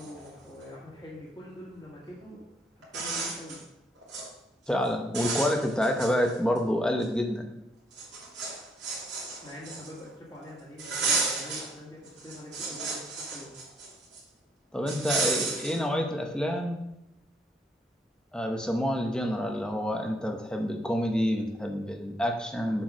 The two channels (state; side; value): normal; both; correlation 0.71